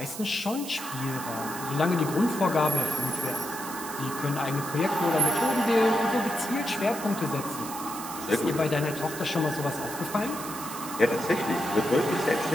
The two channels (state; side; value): noise; right; hiss, 10 dB below the sound